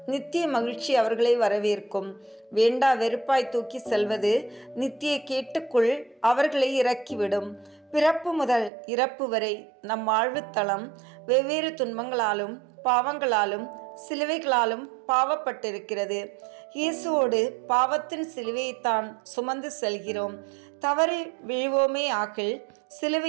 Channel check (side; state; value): left; drops out; at 8.7 s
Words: நித்திய மகிழ்ச்சி அவர்களை வரவேற்கும். வேண்டா வெறுப்பாய் தூக்கி செல்வது நித்திய கேட்டுக்குள் அவர்களை இறக்கிவிடும். பிறப்பு முதல் இறப்பு வரை நம் வாழ்வுத்தளம் வெவ்வேறு துன்பங்களாலும் பாவங்களாலும் சிலுவைகளாலும் பாவப்பட்டிருக்கிறது. இயேசுவோடு பாவத்தின் சிலுவையைத்தான் சுமந்து செல்கிறோம். தவறி விழுவோமே ஆகில்